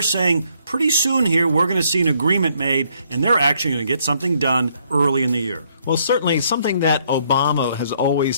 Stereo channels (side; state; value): both; inverted; correlation -0.69